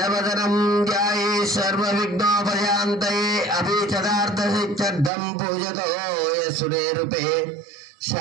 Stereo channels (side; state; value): left; drops out; at 5.1 s